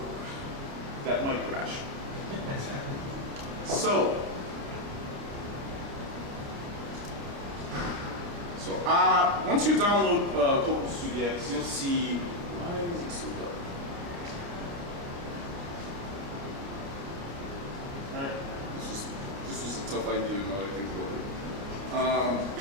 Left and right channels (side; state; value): left; late; 30 ms